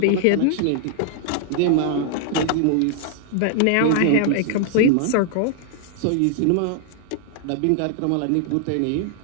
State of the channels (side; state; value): both; different; correlation 0.00